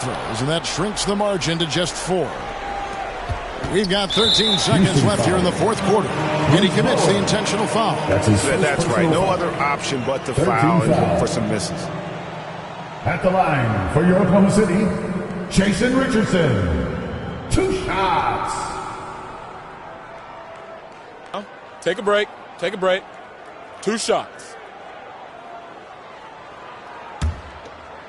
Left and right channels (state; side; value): identical; both; correlation 1.00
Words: and that shrinks the margin to just 4. We've got 13 seconds left here in the fourth quarter, and he commits the intentional foul. That's right. No other option but to foul and look for some misses. At the line for your Oklahoma City, Jason Richardson. 2 shots. Take a break. Take a break. 2 shots.